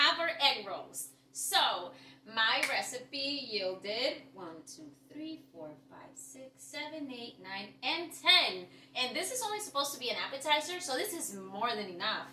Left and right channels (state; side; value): identical; both; correlation 1.00